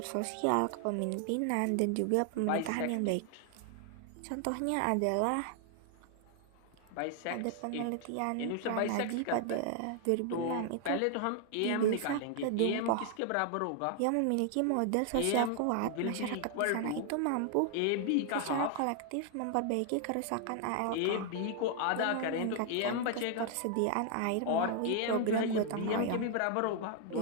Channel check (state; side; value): different; both; correlation 0.00